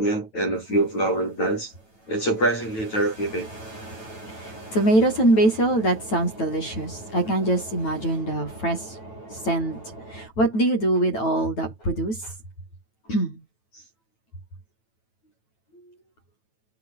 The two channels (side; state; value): right; late; 9.1 ms